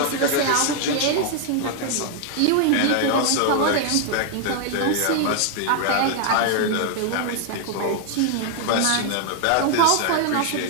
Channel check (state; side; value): different; both; correlation 0.00